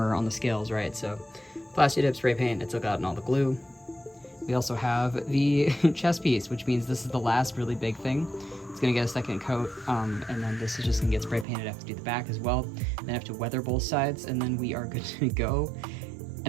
on the scales, right? So plasti dip, spray paint, it took out all the glue. We also have the chest piece, which means this is the last really big thing. It's gonna get a second coat, and then this is just gonna get spray painted. I have to do the back as well. Then I have to weather both sides, and then we are good to go. And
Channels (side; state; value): left; drops out; at 11.5 s